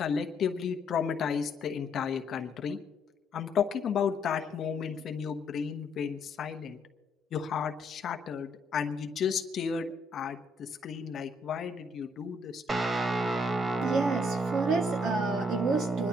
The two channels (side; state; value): both; normal; correlation 0.70